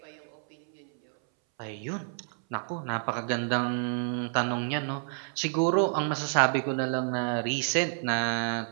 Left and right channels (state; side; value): silent; left; 58 dB below the other